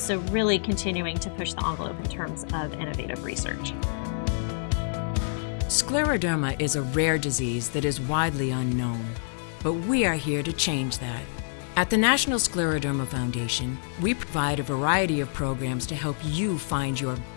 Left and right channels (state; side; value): silent; right; 59 dB below the other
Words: really continuing to push the envelope in terms of innovative research. Scleroderma is a rare disease that is widely unknown, but we are here to change that. At the National Scleroderma Foundation, we provide a variety of programs to help you find your